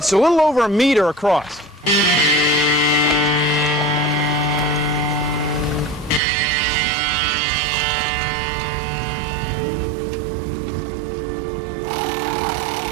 a little over 1 meter across.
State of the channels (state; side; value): drops out; left; at 6.2 s